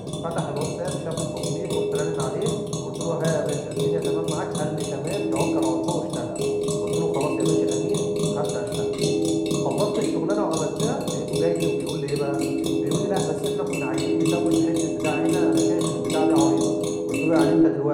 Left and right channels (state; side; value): identical; both; correlation 1.00